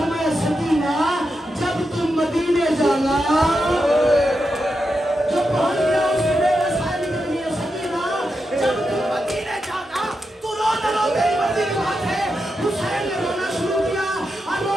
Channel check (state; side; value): normal; both; correlation 0.87